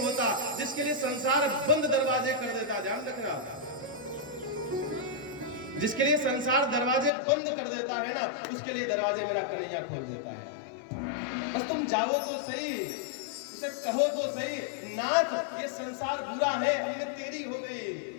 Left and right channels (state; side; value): drops out; right; at 7.1 s